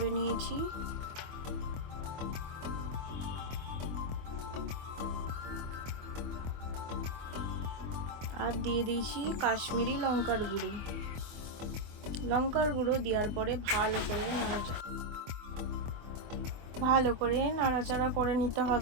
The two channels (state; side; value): late; left; 24 ms